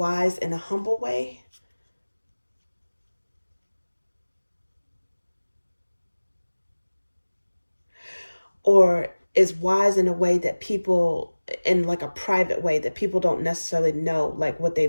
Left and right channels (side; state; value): both; inverted; correlation -1.00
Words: in a humble way. Or is wise in a way that people, in like a private way that people don't necessarily know, like what